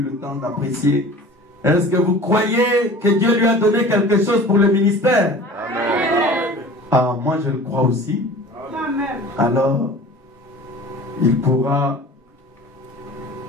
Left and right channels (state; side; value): normal; both; correlation 0.42